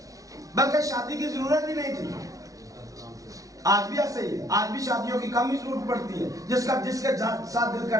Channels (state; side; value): late; left; 0.17 ms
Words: बल्कि शादी की जरूरत ही नहीं थी। आज भी ऐसे ही है, आज भी शादियों की कम ही जरूरत पड़ती है, जिसके साथ दिल